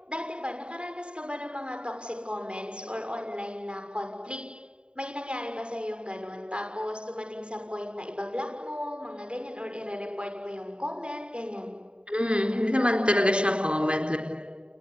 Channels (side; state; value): left; late; 0.052 ms